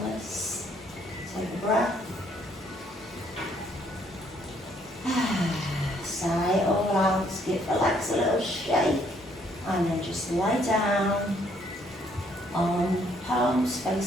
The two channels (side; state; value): both; normal; correlation 0.67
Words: Take a breath. Sigh it all out. Give the legs a little shake. And then just lie down on palms